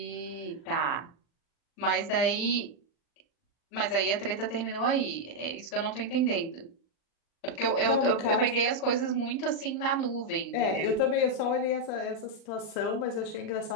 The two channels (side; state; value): right; late; 40 ms